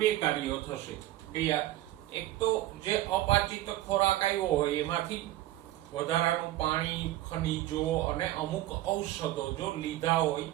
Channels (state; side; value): quieter; left; 15.0 dB